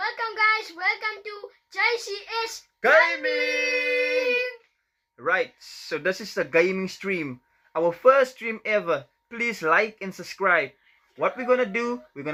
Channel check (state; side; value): identical; both; correlation 1.00